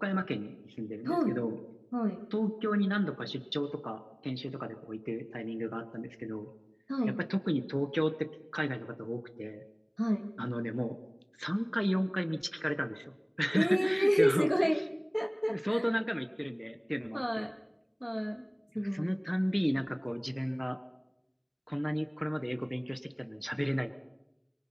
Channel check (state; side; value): identical; both; correlation 1.00